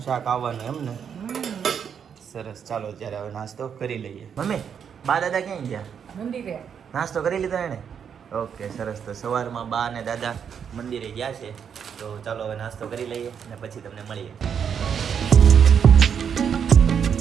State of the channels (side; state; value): left; quieter; 7.6 dB